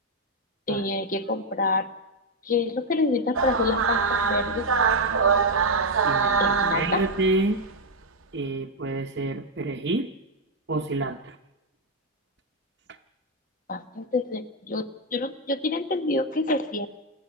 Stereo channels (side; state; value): both; normal; correlation 0.02